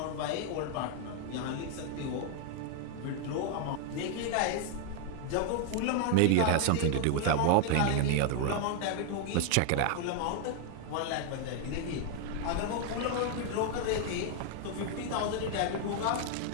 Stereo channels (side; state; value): both; different; correlation 0.00